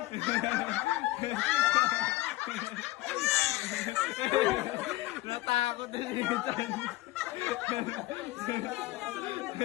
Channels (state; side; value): quieter; right; 18.3 dB